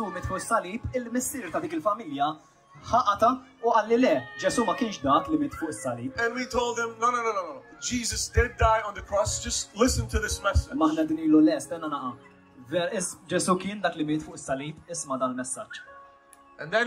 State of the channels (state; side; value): identical; both; correlation 1.00